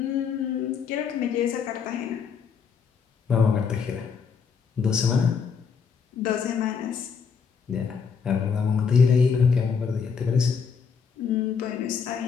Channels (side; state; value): right; quieter; 6.2 dB